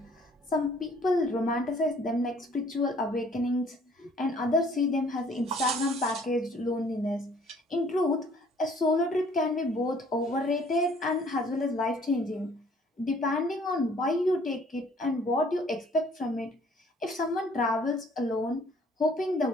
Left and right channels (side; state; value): both; normal; correlation 0.58